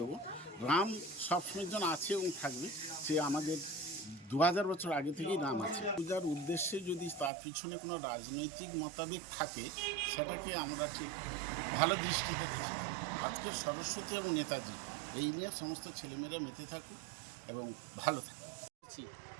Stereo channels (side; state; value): left; drops out; at 7.3 s